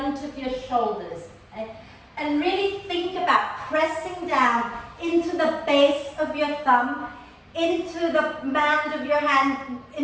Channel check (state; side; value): identical; both; correlation 1.00